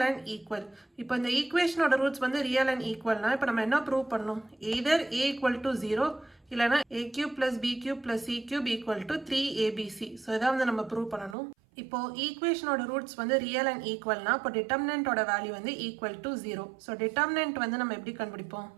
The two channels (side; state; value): left; drops out; at 11.4 s